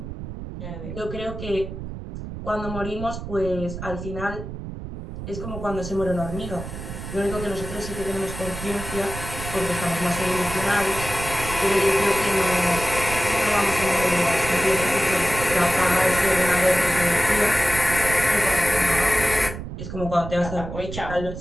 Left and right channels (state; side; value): noise; right; rumble, 9 dB below the sound